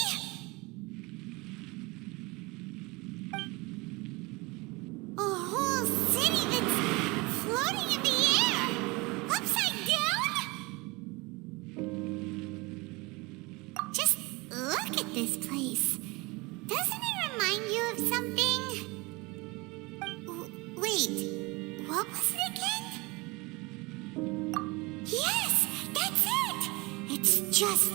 A whole city that's floating in the air? Upside down? Just look at this place. Doesn't it remind you of something? Wait, what was it again? Yes, that's it! It's just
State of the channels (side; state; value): left; quieter; 25.0 dB